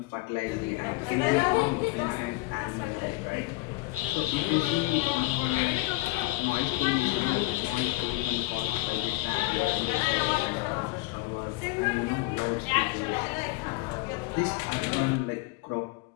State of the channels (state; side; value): quieter; right; 20.5 dB